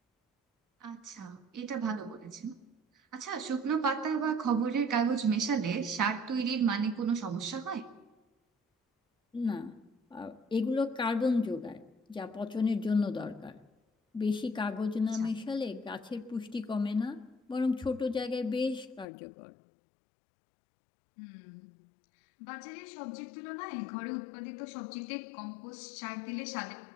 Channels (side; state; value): right; drops out; at 19.1 s